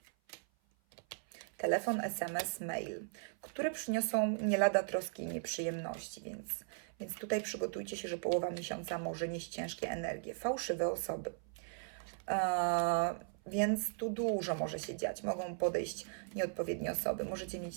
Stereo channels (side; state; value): left; silent; 53 dB below the other